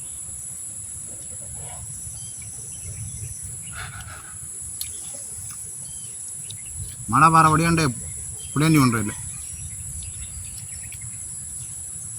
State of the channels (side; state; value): both; identical; correlation 1.00